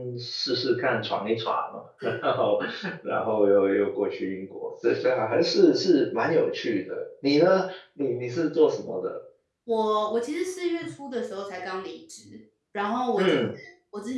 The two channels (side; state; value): both; identical; correlation 1.00